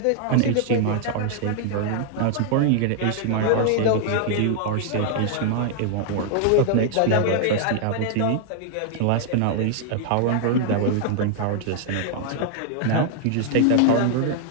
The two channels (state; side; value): different; both; correlation 0.00